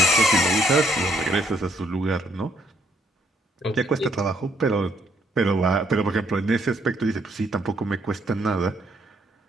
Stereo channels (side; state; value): both; normal; correlation 0.70